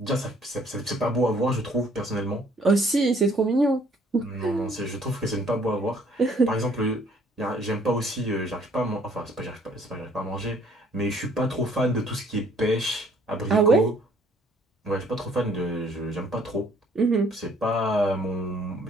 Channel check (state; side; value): normal; both; correlation 0.61